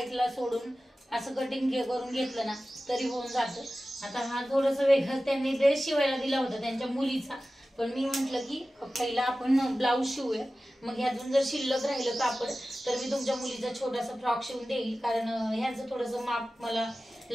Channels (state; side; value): normal; both; correlation 0.95